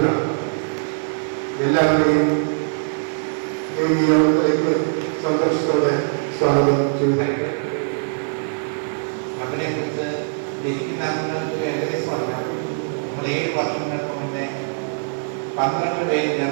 എല്ലാവരെയും ഈ നിയോഗത്തിലേക്ക് സന്തോഷത്തോടെ സ്വാഗതം ചെയ്യുന്നു. ക്ലബിനെ കുറിച്ച് ജനിക്കുന്നവർക്ക് ഏകദേശം പറയാം. നമ്മൾ 7 വർഷങ്ങൾക്ക് മുന്നേ 12 പേര്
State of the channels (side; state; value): left; silent; digital silence